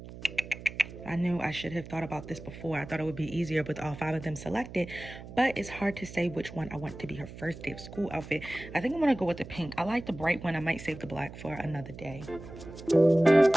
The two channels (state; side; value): noise; right; hum, 14 dB below the sound